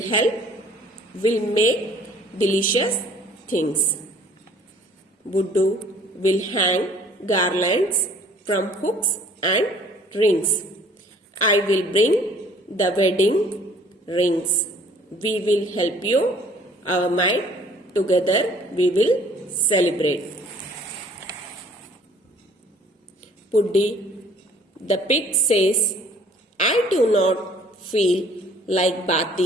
help, will make delicious things. Buddu will hang garlands from hooks and rings. I will bring the wedding rings. We will help you. Our might together we will celebrate. Puddi the pig says, I do not feel like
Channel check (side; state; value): both; normal; correlation 0.55